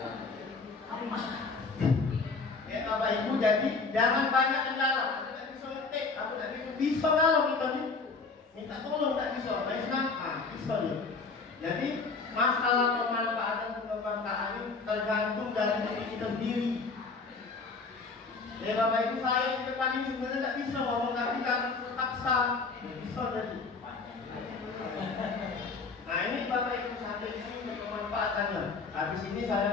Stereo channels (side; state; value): right; quieter; 4.3 dB